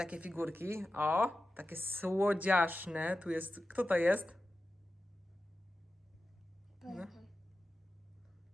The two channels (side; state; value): both; normal; correlation 0.93